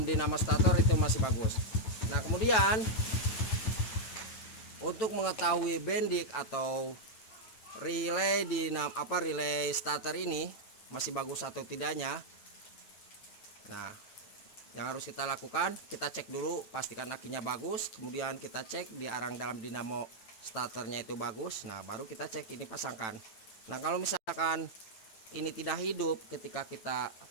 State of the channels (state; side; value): late; right; 9.1 ms